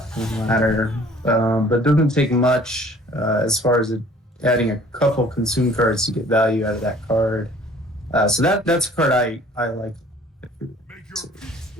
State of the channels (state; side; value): normal; both; correlation 0.53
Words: in the ladder, but doesn't take much as far as adding a couple consume cards to get value out of that card. So that's a card I like. It's a